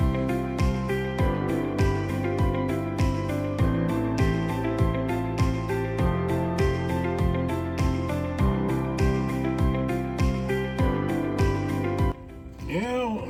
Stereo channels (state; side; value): identical; both; correlation 1.00